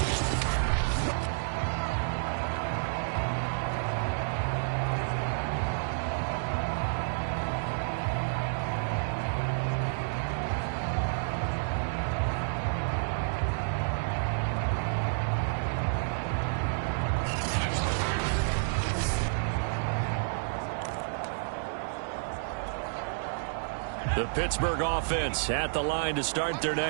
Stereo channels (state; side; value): silent; left; digital silence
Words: The Pittsburgh offense at the line to start their